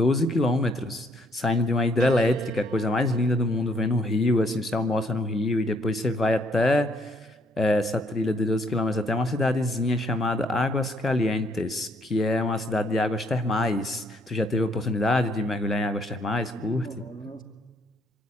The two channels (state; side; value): normal; both; correlation 0.68